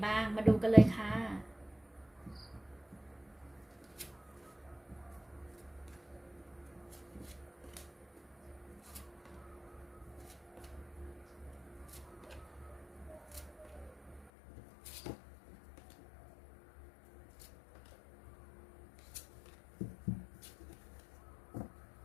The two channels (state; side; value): drops out; right; at 14.2 s